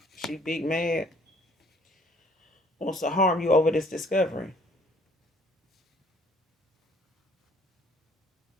She big mad. Wants to harm you over this discovery.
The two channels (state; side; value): normal; both; correlation 0.59